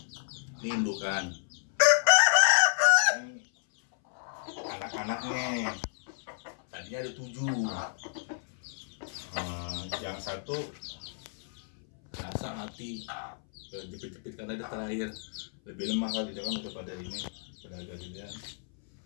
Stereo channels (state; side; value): silent; right; 57 dB below the other